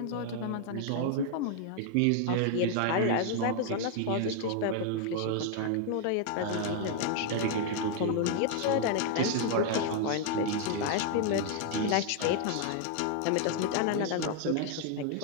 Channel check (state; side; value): different; both; correlation 0.00